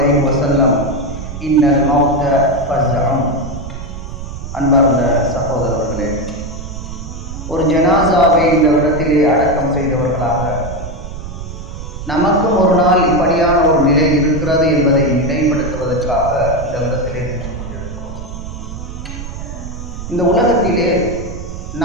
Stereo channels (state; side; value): noise; right; rumble, 9 dB below the sound